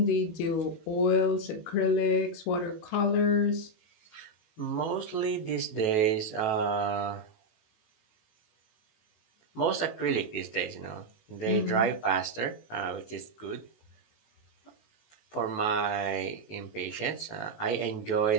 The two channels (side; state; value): right; late; 18 ms